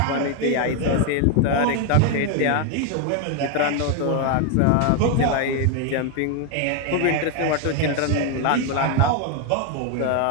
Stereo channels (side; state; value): both; different; correlation 0.01